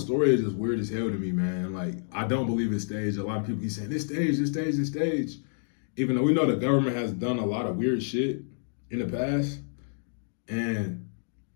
is just weird as hell to me, man. Like, I don't believe it's staged. A lot of people keep saying, this stage. Even though we know the government has done a lot of weird shit in the past. And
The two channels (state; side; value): silent; right; digital silence